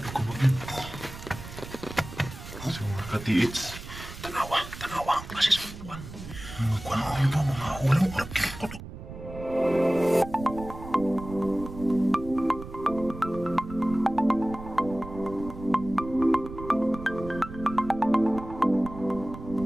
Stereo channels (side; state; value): right; noise; rumble, 12 dB below the sound